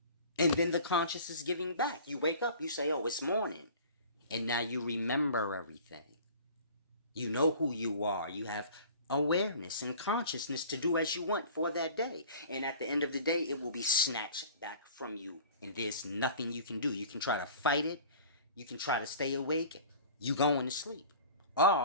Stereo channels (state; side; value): inverted; both; correlation -0.44